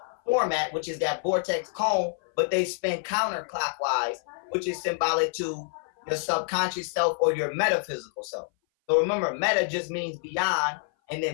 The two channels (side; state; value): right; silent; 57 dB below the other